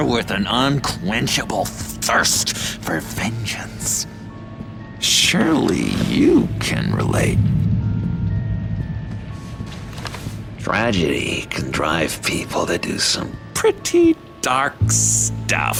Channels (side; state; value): both; identical; correlation 1.00